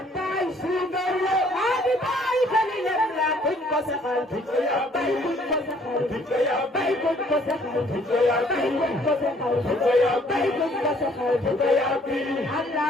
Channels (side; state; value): both; normal; correlation 0.61